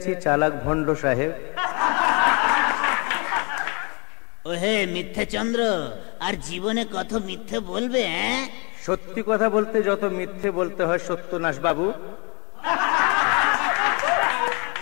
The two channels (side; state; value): right; quieter; 32.4 dB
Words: চালাক ভণ্ড সাহেব। ওহে মিথ্যে চন্দ্র, আর জীবনে কত মিথ্যে বলবে? সত্যি কথা বলতে যত মিথ্যে বলতে হয় সত্যনাশ বাবু।